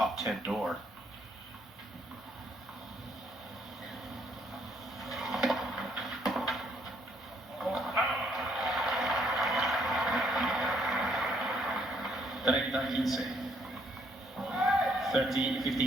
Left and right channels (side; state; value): both; normal; correlation 0.69